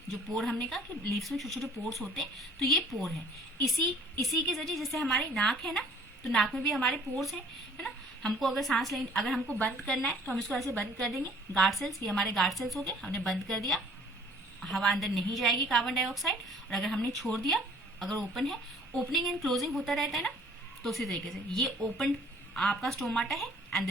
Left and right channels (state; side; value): normal; both; correlation 0.54